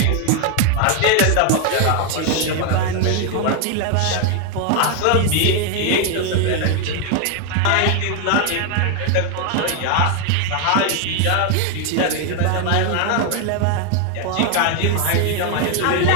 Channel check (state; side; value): different; both; correlation 0.01